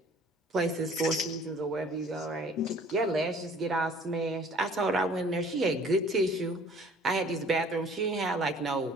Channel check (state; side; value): normal; both; correlation 0.53